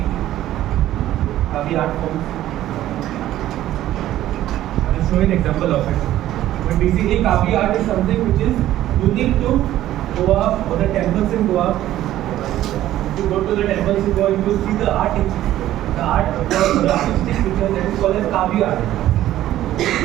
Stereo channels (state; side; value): quieter; left; 13.6 dB